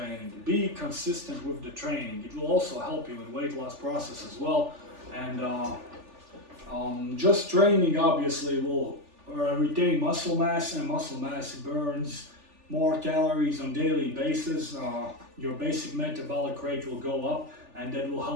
Be consistent with the training. It will also help you in weight loss process as well. And just training obviously will retain muscle mass, and muscle mass burns more calories on daily basis. Your basic metabolic rate will go up, and that will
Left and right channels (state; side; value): late; left; 3.4 ms